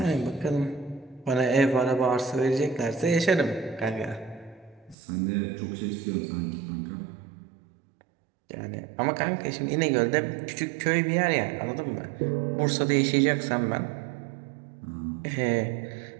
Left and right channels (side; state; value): left; drops out; at 5.0 s